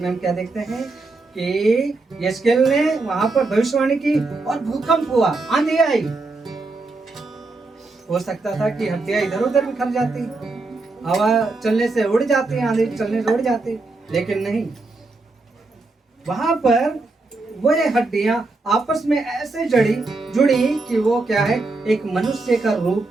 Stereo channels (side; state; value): left; quieter; 3.4 dB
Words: हम क्या देखते हैं कि यहेजकेल ने वहां पर भविष्यवाणी की और भूकंप हुआ, आंधी आई। हो सकता था कि हड्डियां इधर उधर बिखर जाती, हवा चलने से उड़ जाती, आंधी चलने से उड़ जाती, लेकिन नहीं, वहां पर वो हड्डियां आपस में ऐसे जुड़ी कि वो क्या है, एक मनुष्य का